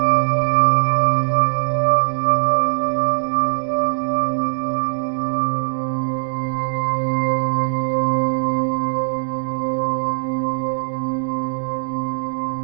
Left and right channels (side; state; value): left; silent; digital silence